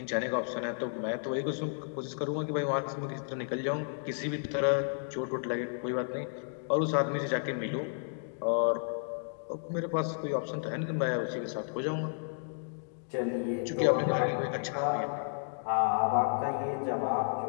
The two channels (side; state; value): right; silent; digital silence